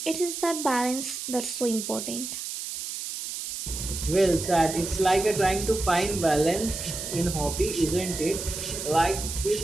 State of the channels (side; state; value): right; noise; hiss, 6 dB below the sound